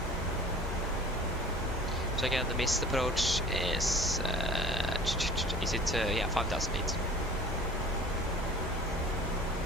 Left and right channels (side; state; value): both; normal; correlation 0.44